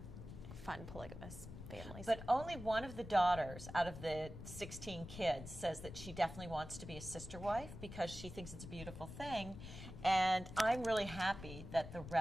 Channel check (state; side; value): noise; left; rumble, 11 dB below the sound